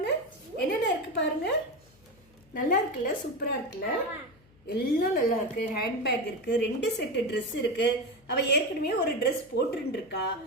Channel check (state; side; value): noise; left; hum, 29 dB below the sound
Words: என்னென்ன இருக்கு பாருங்க. நல்லா இருக்குல்ல? சூப்பரா இருக்குல்ல? எல்லாம் நல்லா இருக்கு. ஹேண்ட்பேக் இருக்கு, 2 செட்டு ட்ரெஸ் இருக்கு. அவ ஏற்கனவே ஒரு ட்ரெஸ் போட்டுட்டு இருக்கா.